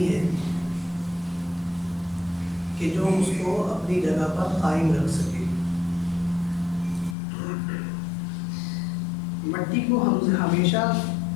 ہے کہ جو اس کو اپنی جگہ پر قائم رکھ سکے. مٹی کو ہم ہمیشہ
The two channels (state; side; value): drops out; right; at 7.2 s